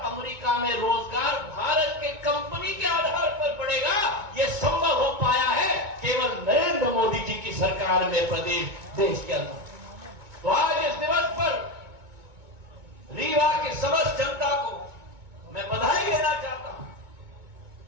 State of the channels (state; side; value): late; left; 2.2 ms